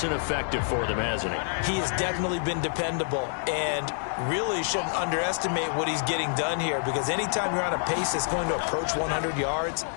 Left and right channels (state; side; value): silent; right; digital silence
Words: and effective for them, hasn't he? He has definitely been dependable, and really shouldn't underestimate what he's getting done here, because anytime you're on a pace that's going to approach 100 yards,